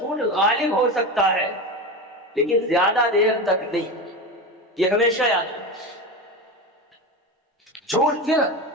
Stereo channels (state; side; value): normal; both; correlation 0.22